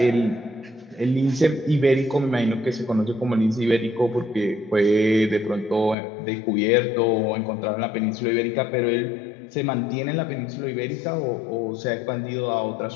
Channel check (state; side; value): drops out; right; at 6.0 s